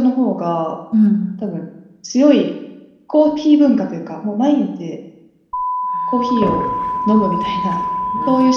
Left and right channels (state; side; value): identical; both; correlation 1.00